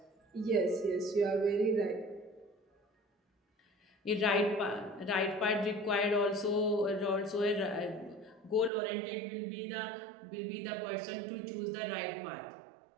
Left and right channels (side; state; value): left; drops out; at 8.7 s